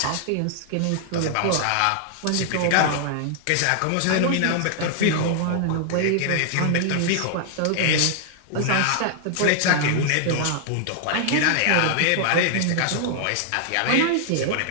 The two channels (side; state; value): both; different; correlation -0.01